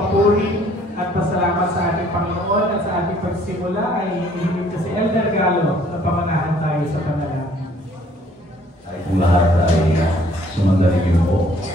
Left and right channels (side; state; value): both; normal; correlation 0.60